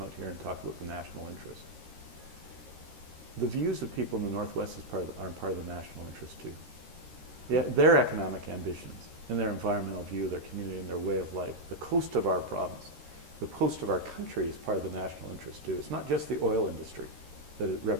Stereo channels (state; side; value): late; left; 13 ms